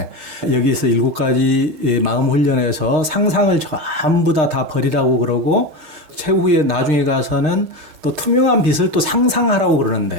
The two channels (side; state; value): left; late; 6.5 ms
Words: 여기서 7가지 마음 훈련에서 상상을 전부 다 버리라고 그러고 최후에 나중에 가서는 또 투명한 빛을 또 상상하라고